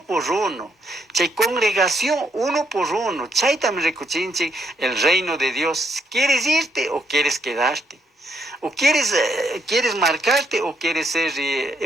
por uno. Chay congregación uno por uno. Chay también recuchinchi el reino de Dios. ¿Quieres irte o quieres quedarte? ¿O quieres marcarte o quieres ser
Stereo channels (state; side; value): normal; both; correlation 0.74